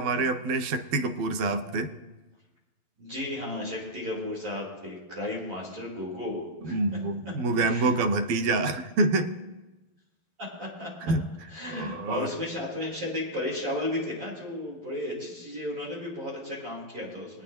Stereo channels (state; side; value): late; left; 12 ms